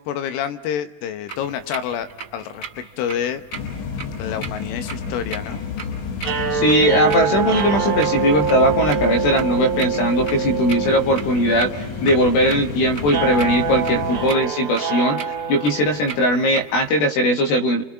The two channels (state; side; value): late; right; 20 ms